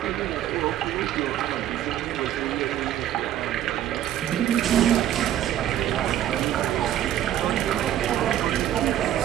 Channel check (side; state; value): left; quieter; 11.8 dB